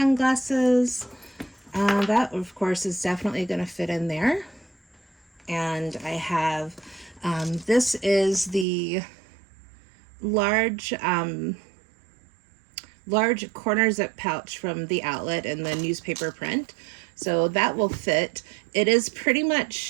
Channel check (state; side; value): drops out; left; at 8.7 s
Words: That, of course, is definitely going to fit in there. And I have, this is the large corner zip pouch from the outlet in the newspaper print. So that will fit. It is pretty